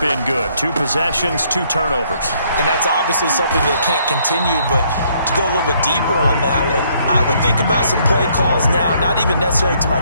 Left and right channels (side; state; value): both; inverted; correlation -0.67